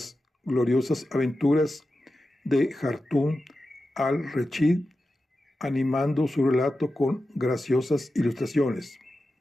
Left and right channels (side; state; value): both; normal; correlation 0.92